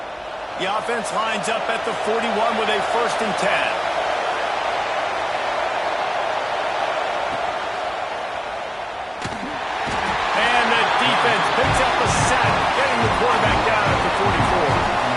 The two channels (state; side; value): identical; both; correlation 1.00